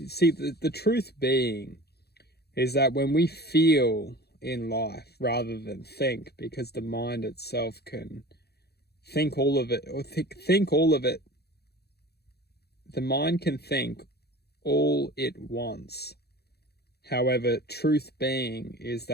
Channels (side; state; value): right; late; 0.47 ms